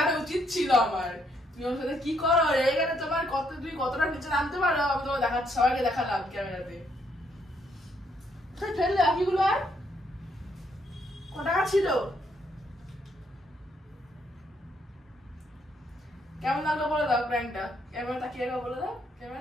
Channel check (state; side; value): normal; both; correlation 0.73